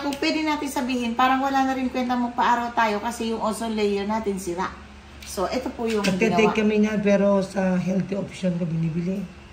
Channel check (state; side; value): identical; both; correlation 1.00